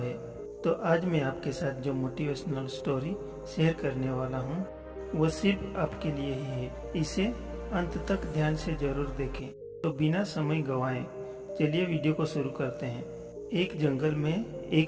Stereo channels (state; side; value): identical; both; correlation 1.00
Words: तो आज मैं आपके साथ जो मोटिवेशनल स्टोरी शेयर करने वाला हूँ वो सिर्फ आपके लिए ही है। इसे अंत तक ध्यान से जरूर देखें। तो बिना समय गंवाए चलिए वीडियो को शुरू करते हैं। एक जंगल में